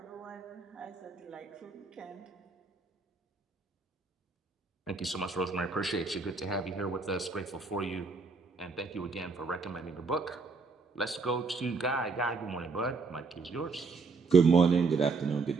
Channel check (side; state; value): left; quieter; 4.3 dB